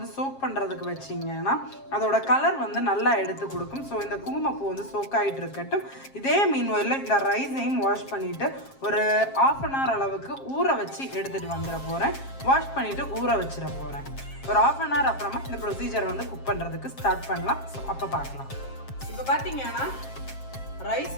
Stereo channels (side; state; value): right; late; 7.4 ms